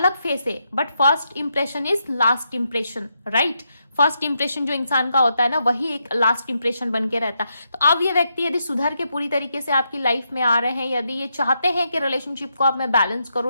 फेस है। But first impression is last impression, right. First impression जो इंसान का होता है ना, वही एक लास्ट इंप्रेशन बन के रहता है। तो अब ये व्यक्ति यदि सुधर के पूरी तरीके से आपकी लाइफ में आ रहे हैं, यदि ये चाहते हैं कि रिलेशनशिप को अब मैं बैलेंस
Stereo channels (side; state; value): both; inverted; correlation -0.82